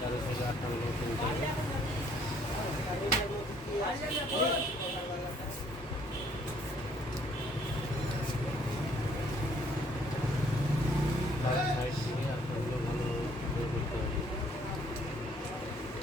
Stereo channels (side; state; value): both; normal; correlation 0.63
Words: সাইডে আটটা বসে নিতে হবে। সাইড থেকে আটটাগুলো ভালোভাবে করতে হবে।